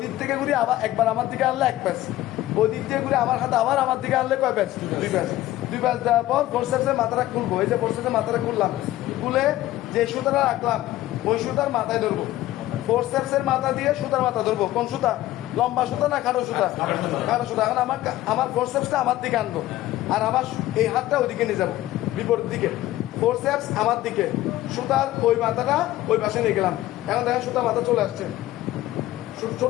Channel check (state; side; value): quieter; right; 15.3 dB